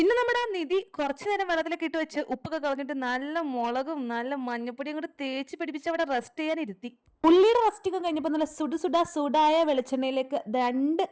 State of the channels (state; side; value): identical; both; correlation 1.00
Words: നമ്മുടെ ആ നിധി കുറച്ചു നേരം വെള്ളത്തിലൊക്കെ ഇട്ട് വെച്ച് ഉപ്പൊക്കെ കളഞ്ഞിട്ട് നല്ല മുളകും നല്ല മഞ്ഞപ്പൊടിയും കൂടെ തേച്ച് പിടിപ്പിച്ച് അവിടെ റെസ്റ്റ് ചെയ്യാൻ ഇരുത്തി. ഉള്ളിയുടെ റെസ്റ്റിങ് കഴിഞ്ഞപ്പോൾ നല്ല സുടായ വെളിച്ചെണ്ണയിലേക്ക് 2